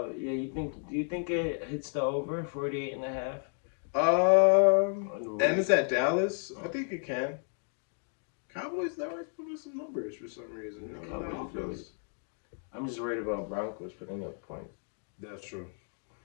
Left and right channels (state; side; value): silent; right; 56 dB below the other